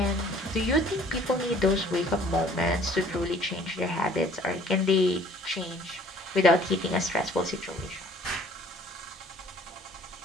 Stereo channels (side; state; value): both; normal; correlation 0.54